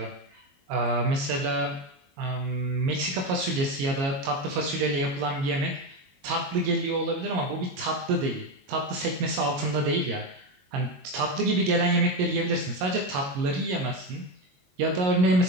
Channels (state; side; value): late; left; 22 ms